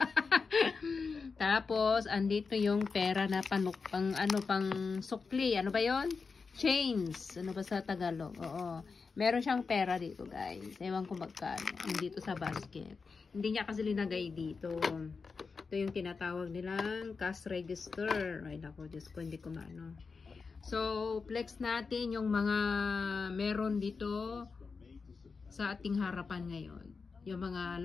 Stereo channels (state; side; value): quieter; right; 4.8 dB